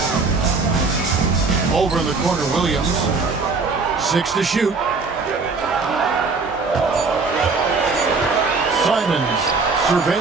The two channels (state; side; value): quieter; left; 4.2 dB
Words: Over in the corner, Williams. 6 to shoot. Simons